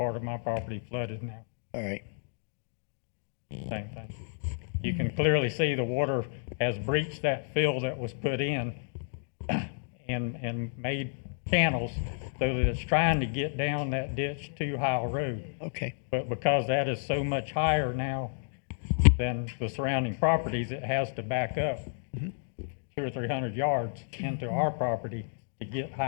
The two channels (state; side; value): silent; right; digital silence